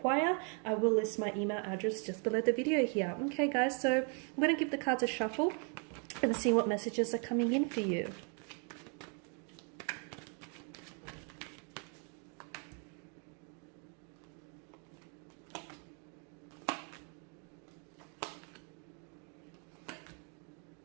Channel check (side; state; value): left; quieter; 39.3 dB